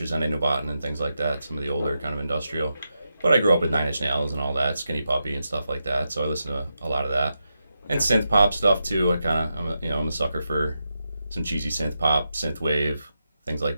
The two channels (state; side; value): inverted; both; correlation -0.87